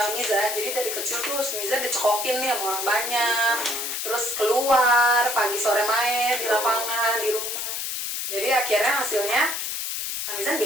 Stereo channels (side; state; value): left; noise; hiss, 3 dB below the sound